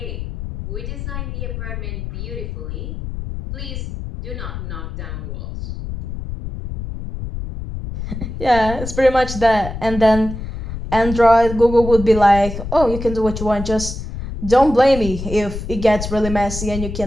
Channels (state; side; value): noise; left; rumble, 7 dB below the sound